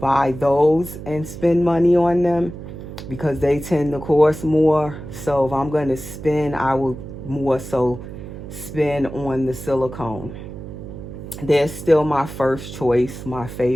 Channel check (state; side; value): noise; right; hum, 11 dB below the sound